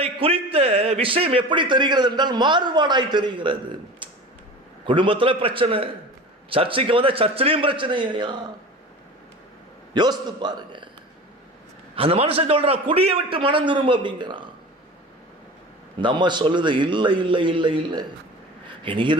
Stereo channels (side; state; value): both; normal; correlation 0.35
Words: குறித்த விஷயம் எப்படி தெரிகிறது என்றால் மாறுபாடாய் தெரிகிறது. குடும்பத்தில் பிரச்சனை, சர்ச்சைக்கு வந்தா சர்ச்சிலையும் பிரச்சனை. யோசித்து பாருங்க. அந்த மனுஷன் சொல்றான், குடியை விட்டு மனம் திரும்ப அப்படிங்கிறான். இந்த அம்மா சொல்லுது, இல்லை இல்லை இல்லை இல்லை, என்